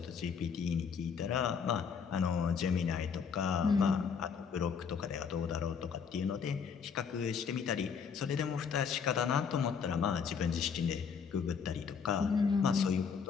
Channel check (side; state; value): right; quieter; 6.4 dB